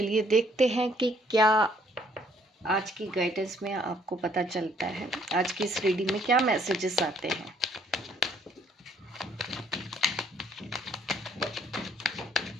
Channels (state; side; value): normal; both; correlation 0.64